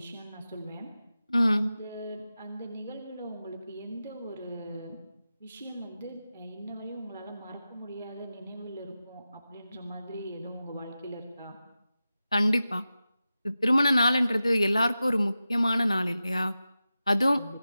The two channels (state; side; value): inverted; both; correlation -0.93